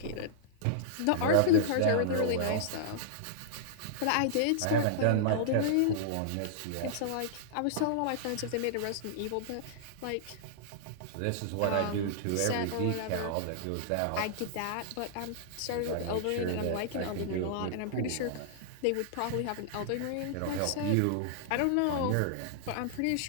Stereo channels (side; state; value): both; different; correlation -0.02